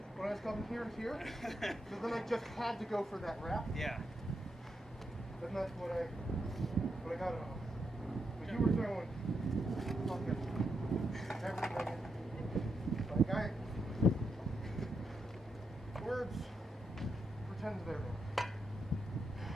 when I was coming here and here. So then I just had to go for that wrap. Yeah. And that's what I got it on. But you were throwing fucking everything in. Like words pretend they're there.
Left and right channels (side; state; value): both; normal; correlation 0.82